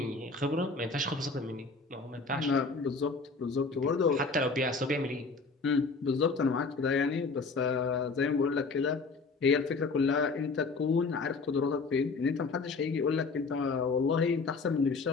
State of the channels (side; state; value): right; quieter; 4.2 dB